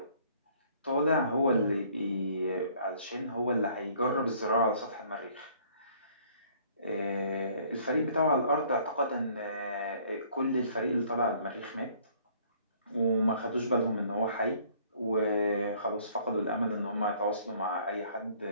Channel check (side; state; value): both; inverted; correlation -0.59